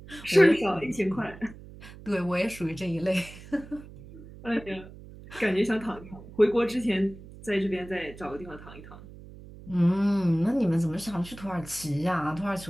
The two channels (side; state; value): right; noise; hum, 17 dB below the sound